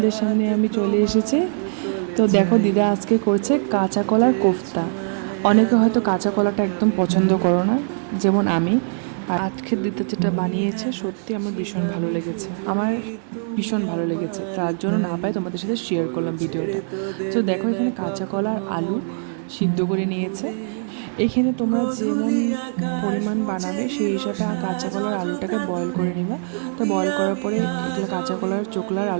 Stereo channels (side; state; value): left; silent; digital silence